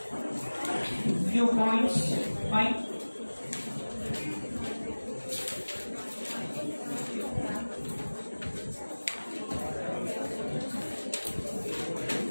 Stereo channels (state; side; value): inverted; both; correlation -1.00